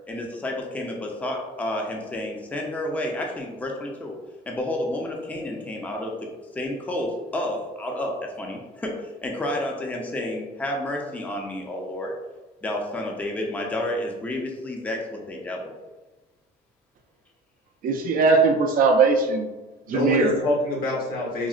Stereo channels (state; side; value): normal; both; correlation 0.42